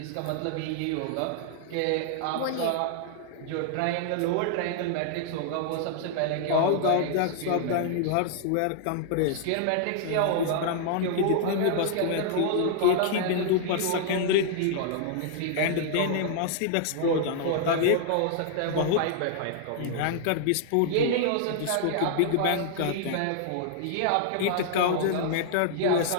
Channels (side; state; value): both; different; correlation -0.01